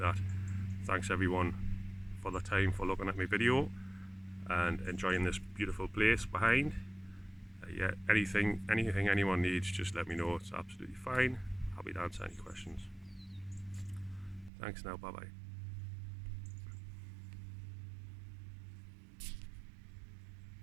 Thanks everyone for the time for looking at my video and enjoying this beautiful place behind. Yeah, anything anyone needs, just let me know. It's absolutely fine. Happy to answer any questions. Thanks now, bye bye.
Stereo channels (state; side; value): drops out; left; at 14.5 s